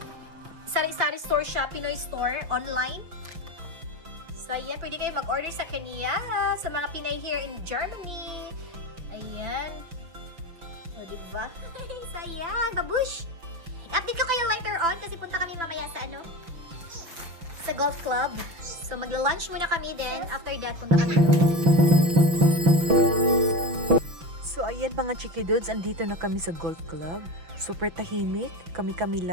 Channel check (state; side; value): late; left; 6.0 ms